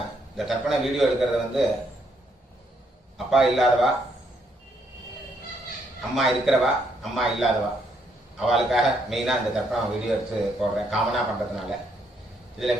இந்த தர்ப்பண வீடியோ எடுக்கிறது வந்து அப்பா இல்லாதவா, அம்மா இருக்கிறவா, அம்மா இல்லாதவா அவளுக்காக மெயினாக இந்த தர்ப்பணம் வீடியோ எடுத்து போடுறேன், காமனாக பண்ணுறதுனால. இதில்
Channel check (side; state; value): both; normal; correlation 0.73